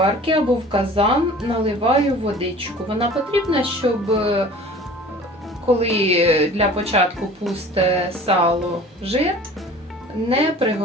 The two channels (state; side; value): normal; both; correlation 0.44